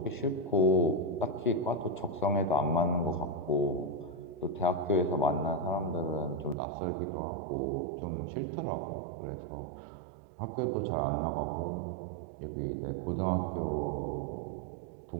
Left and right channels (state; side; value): drops out; left; at 6.6 s